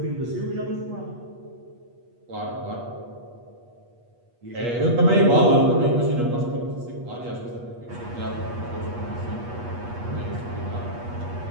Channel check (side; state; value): left; late; 8.3 ms